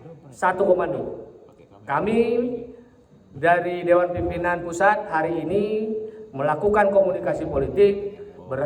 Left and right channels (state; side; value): identical; both; correlation 1.00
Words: satu komando. Kami dari Dewan Pimpinan Pusat hari ini melakukan komunikasi politik,